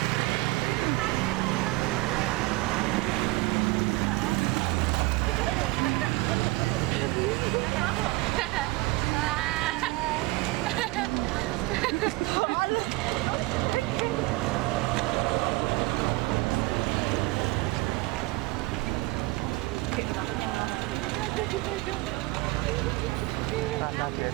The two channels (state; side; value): quieter; left; 21.3 dB